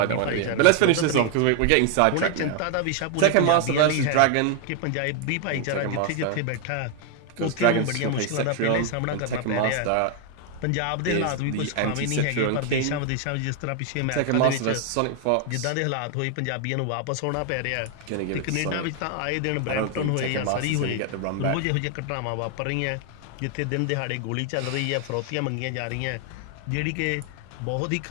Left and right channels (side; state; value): both; different; correlation 0.00